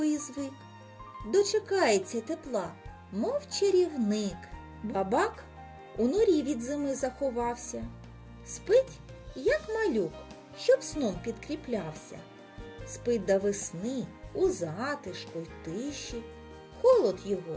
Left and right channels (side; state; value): both; identical; correlation 1.00